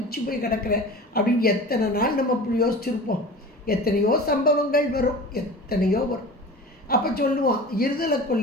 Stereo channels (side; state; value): both; normal; correlation 0.37